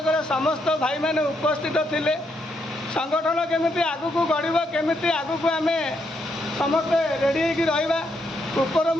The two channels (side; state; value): both; normal; correlation 0.77